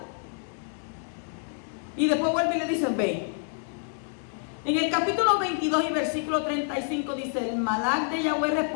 Y después vuelve y le dice, ve. En el capítulo 22 y versículo 35 dice, el Malach de Yahweh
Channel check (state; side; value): silent; right; 60 dB below the other